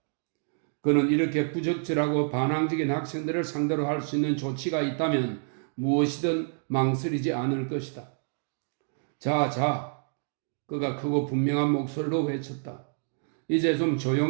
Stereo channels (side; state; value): left; silent; digital silence